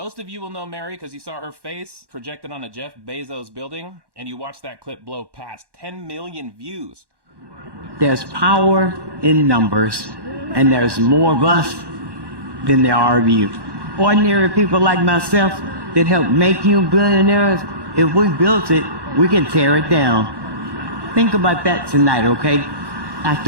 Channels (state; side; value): late; left; 1.1 ms